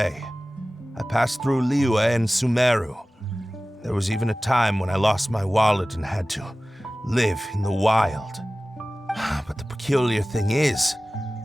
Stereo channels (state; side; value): normal; both; correlation 0.97